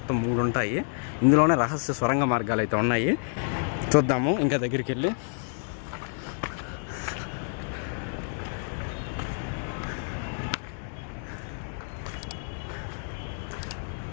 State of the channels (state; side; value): silent; right; digital silence